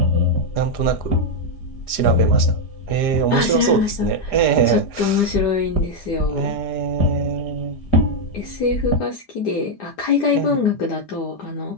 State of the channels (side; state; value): right; late; 4.9 ms